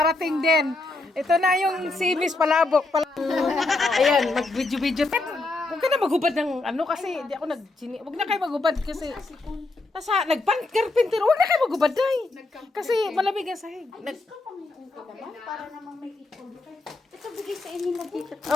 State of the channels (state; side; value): quieter; right; 3.1 dB